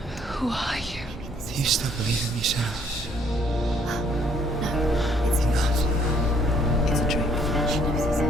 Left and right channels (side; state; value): both; normal; correlation 0.64